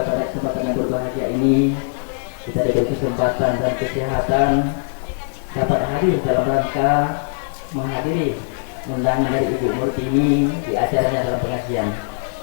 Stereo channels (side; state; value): right; silent; digital silence